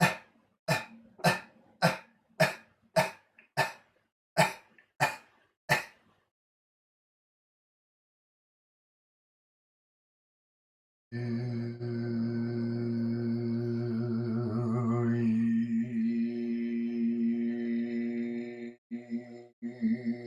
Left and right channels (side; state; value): both; identical; correlation 1.00